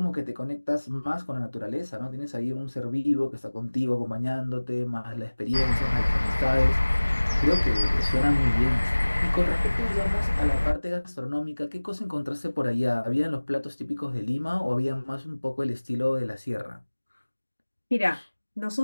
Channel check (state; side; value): inverted; both; correlation -1.00